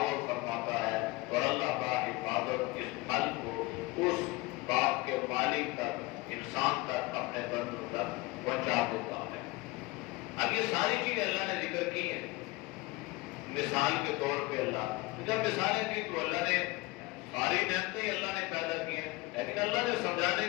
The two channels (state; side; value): quieter; right; 22.1 dB